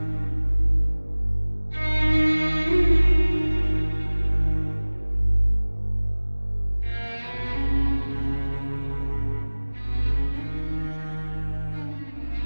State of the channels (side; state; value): both; inverted; correlation -1.00